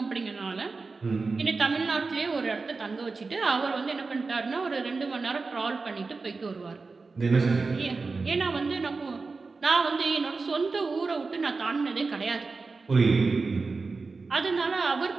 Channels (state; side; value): quieter; left; 4.1 dB